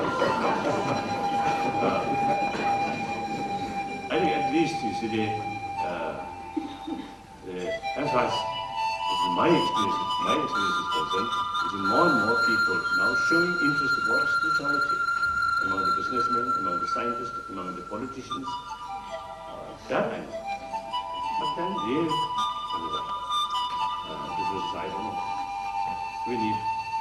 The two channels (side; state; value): both; identical; correlation 1.00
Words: I think at least you see as far as my experience is concerned, is more and more people now showing interest about spirituality among the businessmen, among the scientists, among the politicians. That I know. But then real business, I don't know. We need